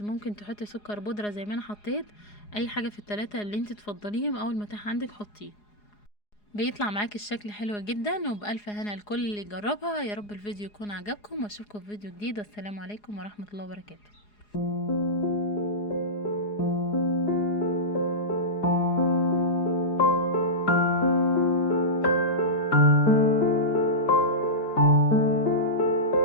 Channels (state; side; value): late; right; 4.8 ms